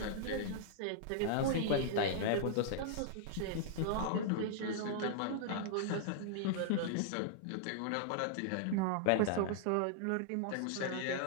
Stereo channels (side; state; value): both; different; correlation -0.01